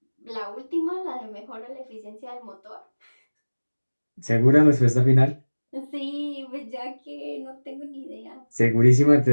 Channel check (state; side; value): inverted; both; correlation -1.00